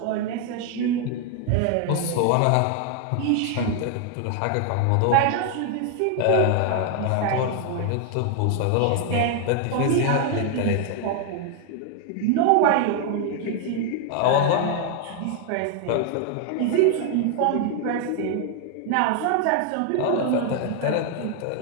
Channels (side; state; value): both; different; correlation 0.00